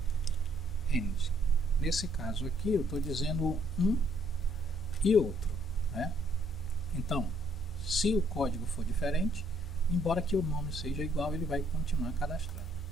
END. Nesse caso aqui eu estou dizendo um e outro, né? Então, se o código for diferente, embora que o nome seja igual, ele vai continuar cadastrado.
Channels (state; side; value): normal; both; correlation 0.67